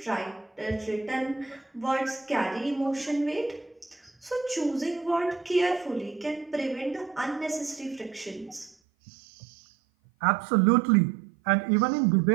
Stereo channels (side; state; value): left; drops out; at 8.8 s